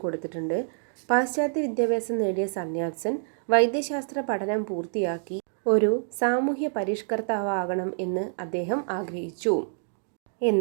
കൊടുത്തിട്ടുണ്ട്. പാശ്ചാത്യ വിദ്യാഭ്യാസം നേടിയ സൺ യാറ്റ്-സെൻ വൈദ്യശാസ്ത്ര പഠനം പൂർത്തിയാക്കി ഒരു സാമൂഹ്യ പരിഷ്കർത്താവാകണം എന്ന് അദ്ദേഹം ആഗ്രഹിച്ചു.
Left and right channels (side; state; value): left; silent; digital silence